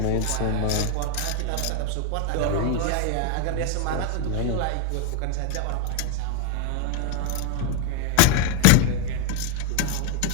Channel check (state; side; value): different; both; correlation 0.01